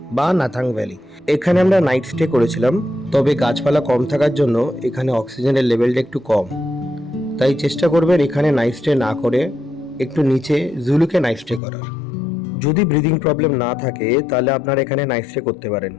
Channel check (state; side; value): drops out; right; at 11.6 s